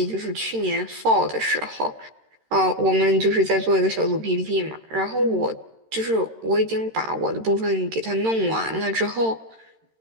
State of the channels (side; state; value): left; late; 13 ms